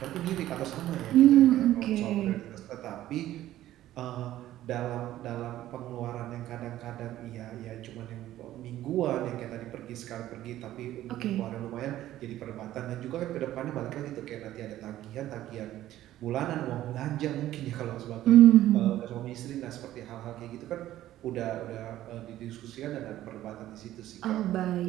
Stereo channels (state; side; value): quieter; left; 13.8 dB